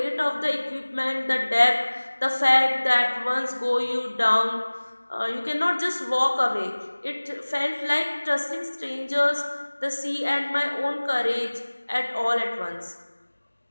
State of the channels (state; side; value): inverted; both; correlation -1.00